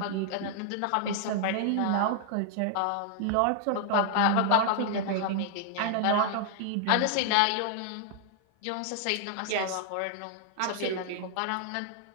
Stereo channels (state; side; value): different; both; correlation 0.00